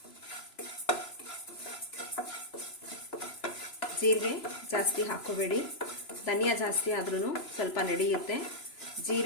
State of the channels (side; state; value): right; late; 3.0 ms